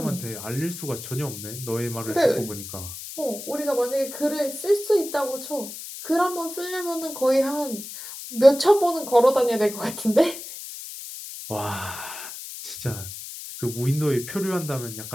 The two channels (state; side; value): noise; left; hiss, 10 dB below the sound